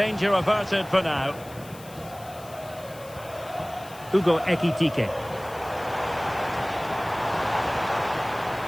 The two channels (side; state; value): left; noise; hiss, 20 dB below the sound